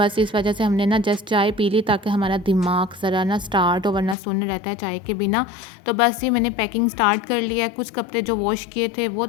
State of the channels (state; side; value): drops out; right; at 4.2 s